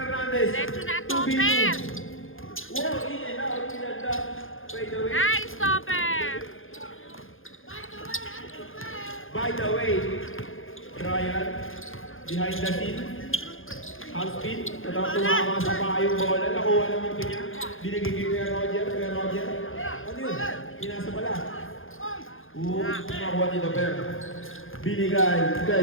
Diretso na, 2v2. Topper. Wow, in and out. Pinagda. By the way. Nice, Topper. By the way, Ryan, behind the scene, half spin, natang tumama sa paa yung bola, nakuha naman ito niya, binigay kay Roger, ano yun? Pinasa pala. Nakuha nito, pero binigay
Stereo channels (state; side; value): late; right; 0.59 ms